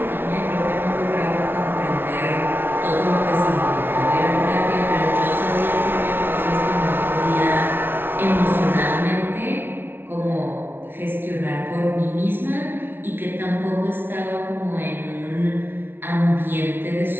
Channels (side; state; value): left; late; 0.11 ms